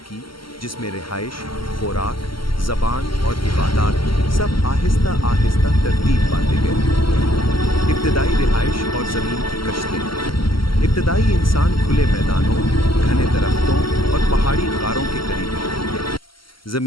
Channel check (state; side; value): late; right; 0.74 ms